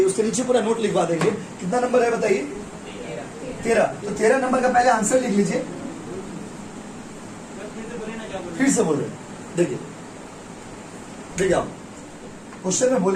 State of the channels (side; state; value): both; identical; correlation 1.00